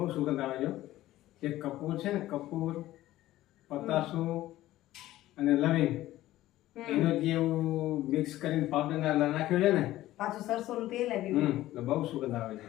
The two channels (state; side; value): quieter; right; 15.3 dB